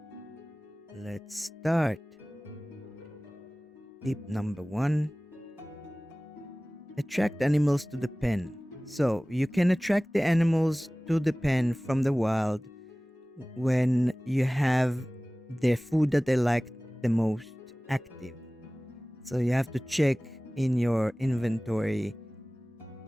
Let's start. Tip number 1. Attract animals to the pen. So you can attract the animals to the pen from the wild when you have their food that they like the most active. So you have to check in your inventory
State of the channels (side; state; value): both; normal; correlation 0.98